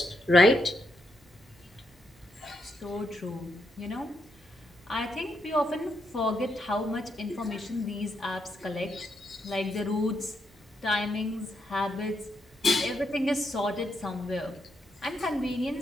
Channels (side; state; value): both; normal; correlation 0.80